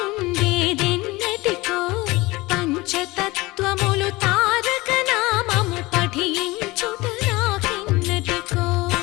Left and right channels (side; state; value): right; quieter; 21.3 dB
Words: పంచతత్వములు తారక నామము పఠించుట నాకెన్నటికో